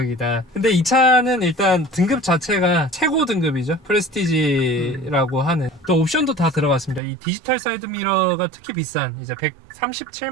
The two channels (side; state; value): left; drops out; at 7.0 s